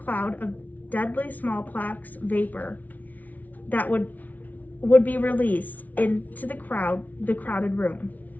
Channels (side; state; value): right; late; 0.076 ms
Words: of deadly smallpox vapor that would be released into the crowded room.